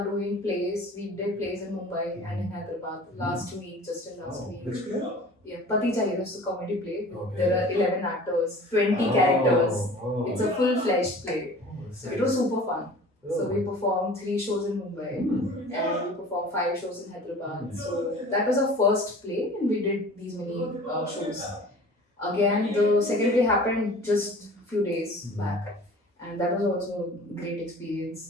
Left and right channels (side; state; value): both; normal; correlation 0.44